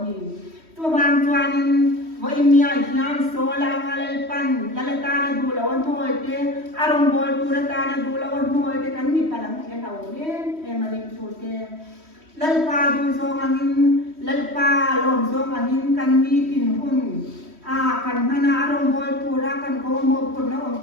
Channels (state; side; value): late; left; 3.1 ms